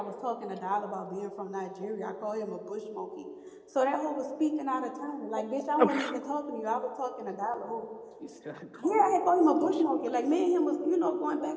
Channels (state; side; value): identical; both; correlation 1.00